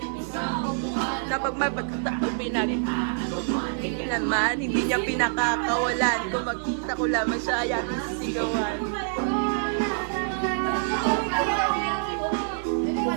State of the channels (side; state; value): left; silent; digital silence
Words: Na pag may pagkataon naman, hindi niya pinakakawalan. Kung magkita ko lamang siya, ay aking sisigawan.